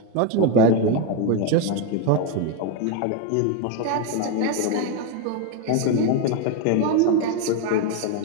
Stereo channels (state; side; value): different; both; correlation 0.02